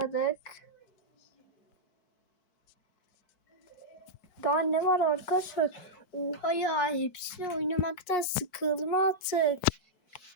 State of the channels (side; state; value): right; late; 4.6 ms